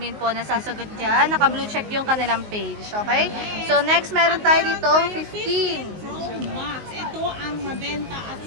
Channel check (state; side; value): late; left; 19 ms